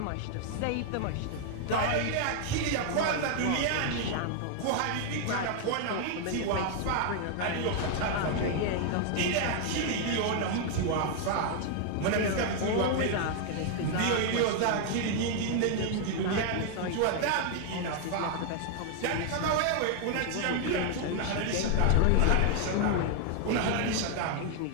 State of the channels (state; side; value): different; both; correlation 0.00